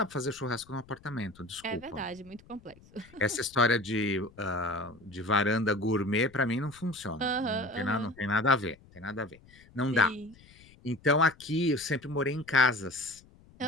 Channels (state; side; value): noise; left; rumble, 25 dB below the sound